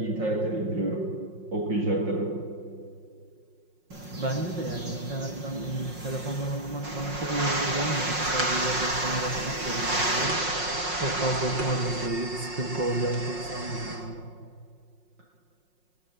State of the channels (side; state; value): left; late; 5.5 ms